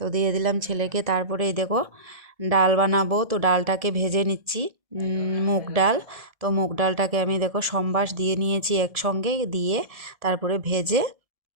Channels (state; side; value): late; left; 1.7 ms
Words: দিয়ে দিলাম ছেলেকে। তারপরে এই দেখো ডাল বানাবো, তো ডালটাকে ভেজে নিচ্ছি, মুগ ডাল। তো মুগ ডালটাকে আমি দেখো সম্বাস দিয়ে নিয়েছি একসঙ্গে দিয়ে, তারপরে ভেজে